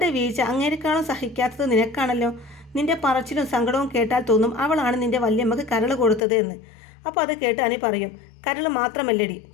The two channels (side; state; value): right; drops out; at 6.2 s